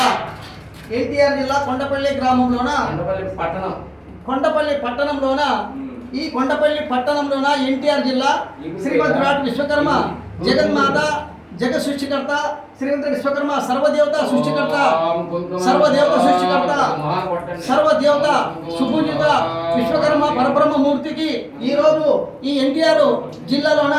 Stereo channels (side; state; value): both; identical; correlation 1.00